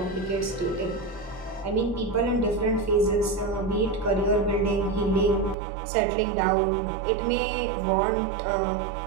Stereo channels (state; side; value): drops out; left; at 5.6 s